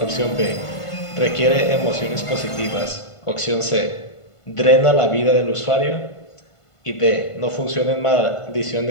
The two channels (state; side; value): late; right; 1.5 ms